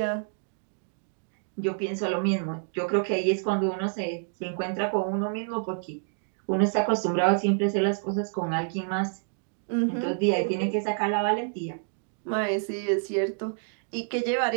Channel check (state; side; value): silent; left; digital silence